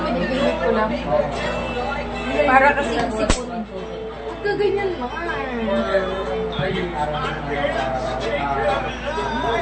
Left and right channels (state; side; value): identical; both; correlation 1.00